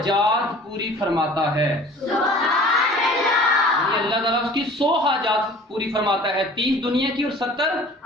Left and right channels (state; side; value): normal; both; correlation 0.46